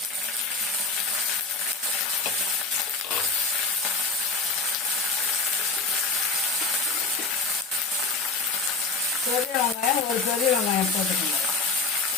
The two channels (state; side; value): quieter; right; 4.0 dB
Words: பெரிய வெங்காயம், ஒரு பெரிய வெங்காயம் போட்டுக்கோங்க.